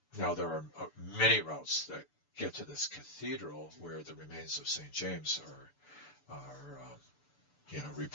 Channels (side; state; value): right; late; 6.8 ms